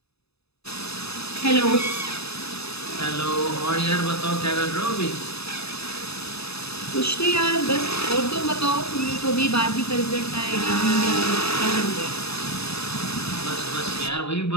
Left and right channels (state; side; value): late; right; 0.79 ms